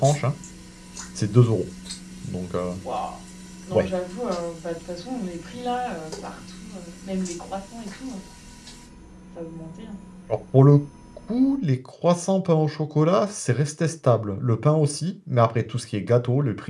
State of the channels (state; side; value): identical; both; correlation 1.00